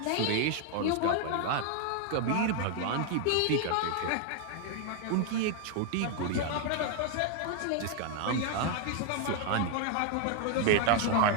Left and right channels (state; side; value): different; both; correlation 0.00